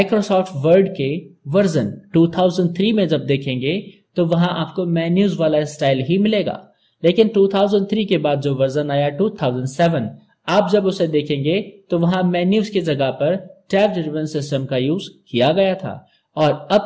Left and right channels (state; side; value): identical; both; correlation 1.00